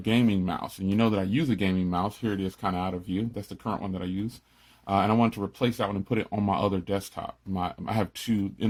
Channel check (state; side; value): identical; both; correlation 1.00